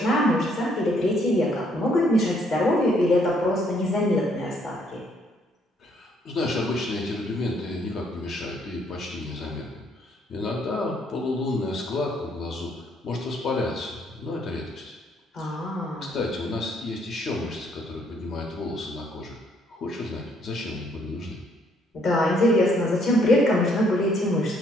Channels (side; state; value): both; normal; correlation 0.68